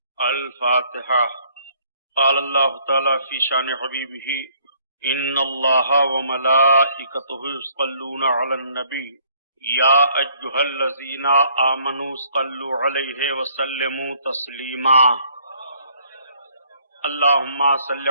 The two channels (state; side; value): inverted; both; correlation -0.64